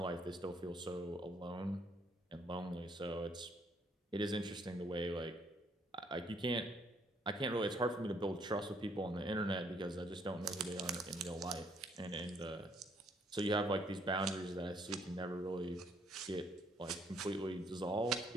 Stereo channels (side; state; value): both; normal; correlation 0.67